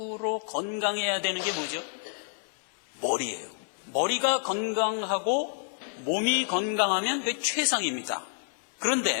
건강해야 되는 게 뭐죠? 머리예요. 머리가 건강하고 몸이 건강하면 그게 최상입니다.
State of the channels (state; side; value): silent; right; 59 dB below the other